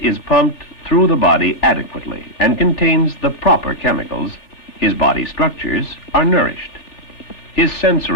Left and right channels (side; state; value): right; late; 3.4 ms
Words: pumped through the body adequately and contains the proper chemicals, his body structures are nourished. His